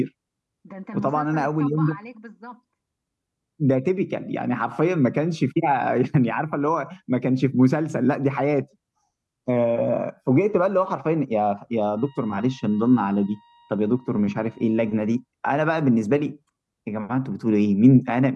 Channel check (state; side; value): identical; both; correlation 1.00